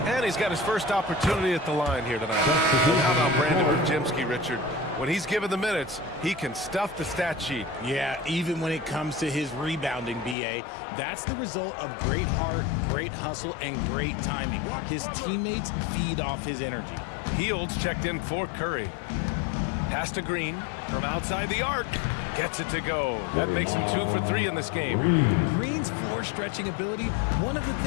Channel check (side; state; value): right; drops out; at 10.4 s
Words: And he's got his first opportunity at the line here tonight. And how about Brandon Pajemski, Richard? When he's given the minutes, he can stuff the stat sheet. Yeah, even when it comes to his rebounding, B.A., that's the result of great heart, great hustle, and great timing. His teammates feed off his energy. Heald's checked in for Curry. Pass to Green from outside the arc. Gets it to go. That makes him 2 for 3 in this game. Green's floor stretching ability, one of the